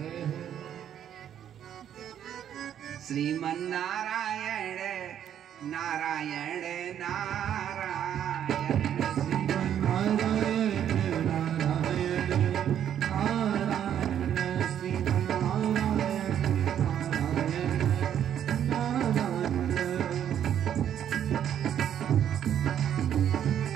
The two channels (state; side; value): quieter; left; 9.8 dB